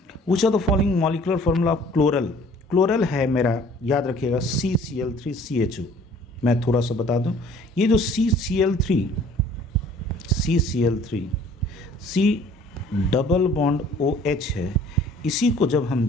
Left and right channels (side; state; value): both; normal; correlation 0.53